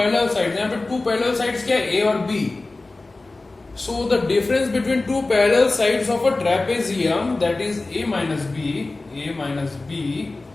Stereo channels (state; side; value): quieter; right; 3.2 dB